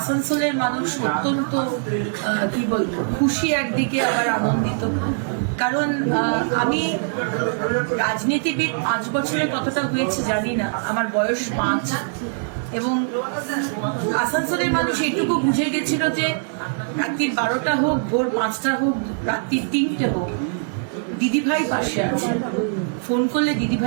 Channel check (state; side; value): silent; left; digital silence